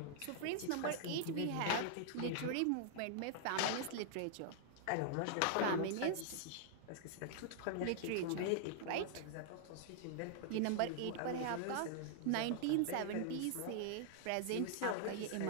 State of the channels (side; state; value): both; different; correlation -0.01